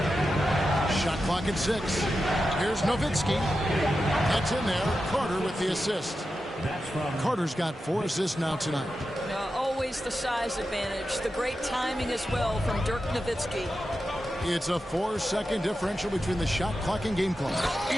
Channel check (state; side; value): normal; both; correlation 0.90